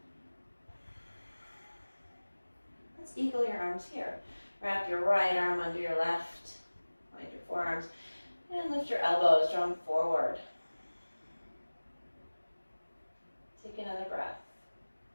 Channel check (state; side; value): inverted; both; correlation -1.00